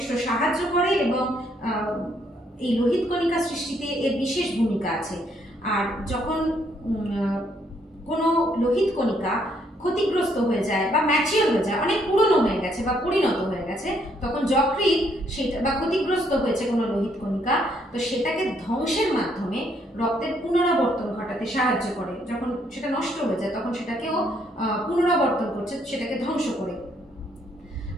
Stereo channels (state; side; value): normal; both; correlation 0.70